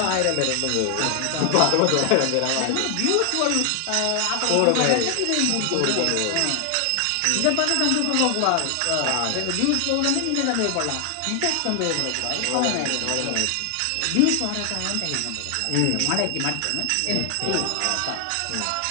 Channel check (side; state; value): both; different; correlation 0.00